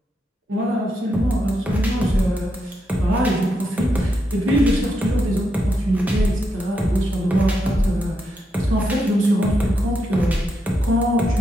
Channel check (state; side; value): normal; both; correlation 0.83